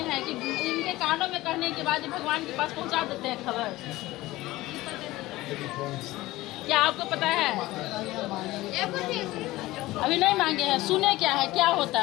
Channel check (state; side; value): quieter; right; 18.1 dB